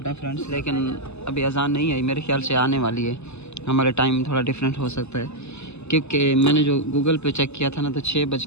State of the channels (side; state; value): right; late; 0.80 ms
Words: है फ्रेंड्स, लेकिन अभी अज़ान नहीं आई, मेरे ख्याल से आने वाली है। हमारे टाइम थोड़ा डिफरेंट हो सकता है, क्योंकि मैंने जो गूगल पे चेक किया था ना, तो